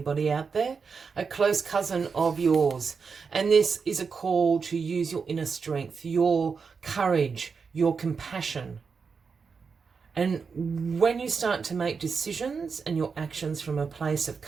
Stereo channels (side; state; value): left; quieter; 5.4 dB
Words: out there. A close cousin of yours. And this is a call to use your inner strength, your courage, your compassion. And when you start to make decisions and your actions from a place of